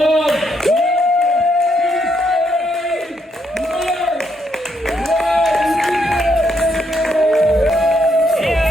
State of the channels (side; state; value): both; normal; correlation 0.76